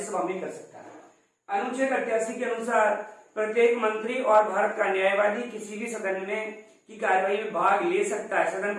में कर सकता है। अनुच्छेद 88 के अनुसार प्रत्येक मंत्री और भारत का न्यायवादी किसी भी सदन में की कार्यवाही में भाग ले सकता है। सदन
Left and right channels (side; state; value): both; identical; correlation 1.00